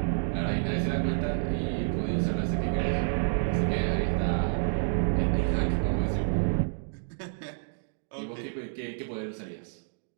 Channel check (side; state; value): left; silent; digital silence